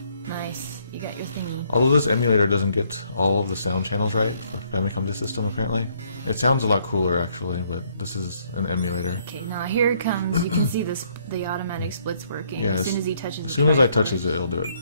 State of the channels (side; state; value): both; inverted; correlation -0.68